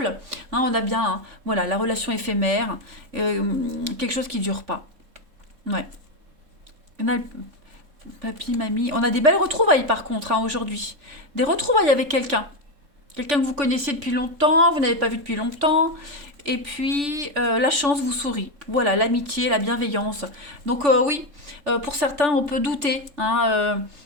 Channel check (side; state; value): left; late; 3.5 ms